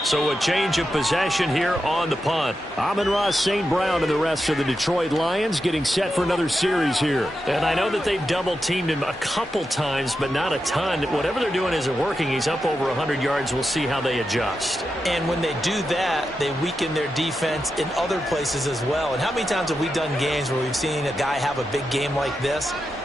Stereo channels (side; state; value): both; normal; correlation 0.88